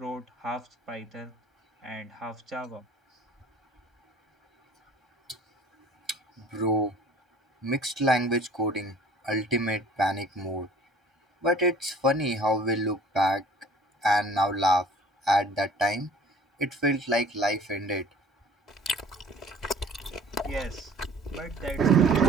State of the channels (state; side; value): normal; both; correlation 0.50